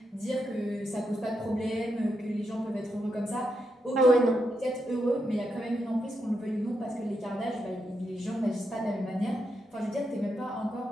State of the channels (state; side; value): normal; both; correlation 0.83